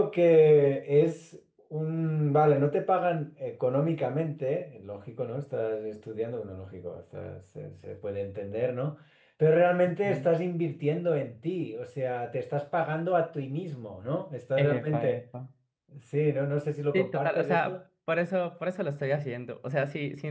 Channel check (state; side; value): identical; both; correlation 1.00